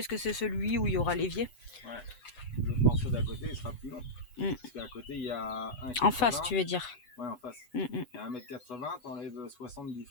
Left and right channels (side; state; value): right; late; 8.1 ms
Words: que c'est celui où il y aura l'évier. Ouais. Le morceau d'à côté, il sera plus long. Mm. Parce qu'à côté, il y a 1,80 m. En face, tu veux dire. Ouais, en face. Mm. Il y a 1,80 m, t'enlèves 60 du